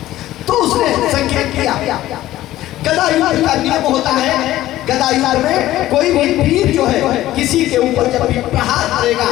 तो उसने संकेत किया। गदा युद्ध का नियम होता है, गदा युद्ध में कोई भी वीर जो है किसी के ऊपर जब भी प्रहार करेगा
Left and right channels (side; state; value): right; quieter; 14.9 dB